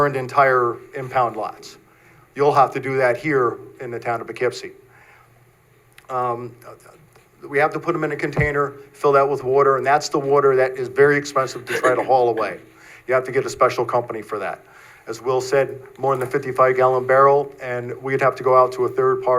entire impound lots. you'll have to do that here in the town of Poughkeepsie. We have to put them in a container, fill that with water, and that's the water that is very expensive to try to haul away. You have to get a special company for that. As Will said, more than a 55-gallon barrel, and we'd have to go out to a third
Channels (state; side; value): identical; both; correlation 1.00